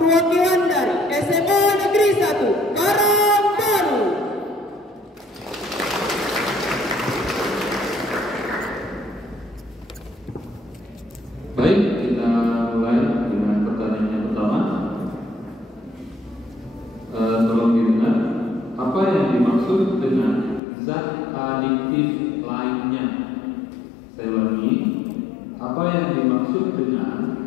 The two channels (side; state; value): right; drops out; at 20.6 s